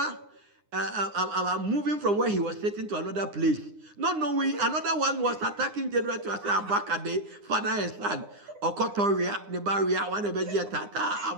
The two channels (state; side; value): late; left; 9.8 ms